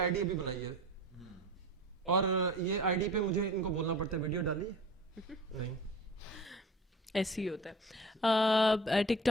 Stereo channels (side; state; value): both; normal; correlation 0.39